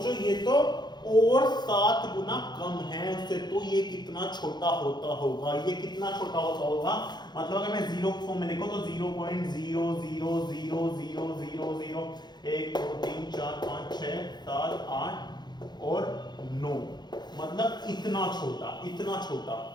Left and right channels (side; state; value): right; late; 0.21 ms